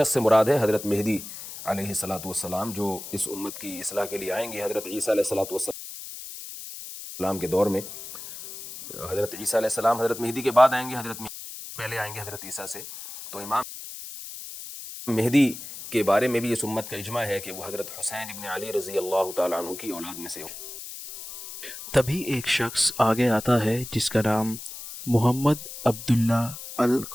से मुराद है हज़रत मेहदी अलैहिस्सलातु वस्सलाम, जो इस उम्मत की इस्लाह के लिए आएंगे। हज़रत ईसा अलैहिस्सलातु वस्सलाम के दौर में हज़रत ईसा अलैहिस्सलाम हज़रत मेहदी के बाद आएंगे, हज़रत मेहदी पहले आएंगे हज़रत ईसा से। तो इमाम मेहदी के बारे में भी इस उम्मत का इजमा है कि वो हज़रत हुसैन इब्न अली रज़ी अल्लाह तआला अन्हु की औलाद में से हो। तभी एक शख्स आगे आता है जिसका नाम मोहम्मद अब्दुल्ला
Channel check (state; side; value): noise; left; hiss, 11 dB below the sound